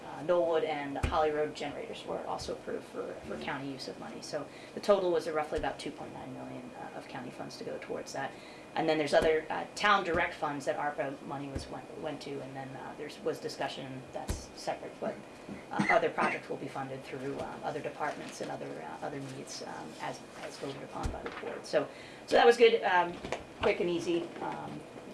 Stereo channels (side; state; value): both; identical; correlation 1.00